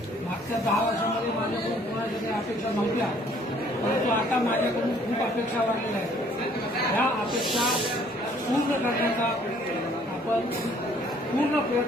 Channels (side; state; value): both; normal; correlation 0.60